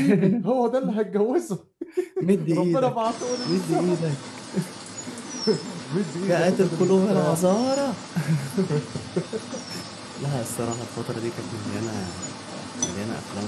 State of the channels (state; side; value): identical; both; correlation 1.00